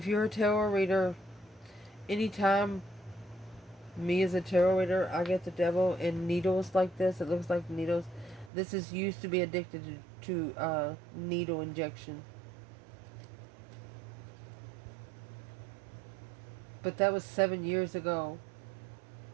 you're a tarot reader, anytime me as a tarot reader, I get the devil in needles like this. It looks like needles. This is used to be addicted to needle injection. But that was 7 years ago.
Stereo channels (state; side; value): drops out; left; at 8.5 s